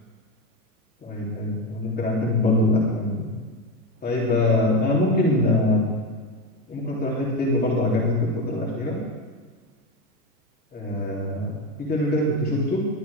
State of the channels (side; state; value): both; normal; correlation 0.16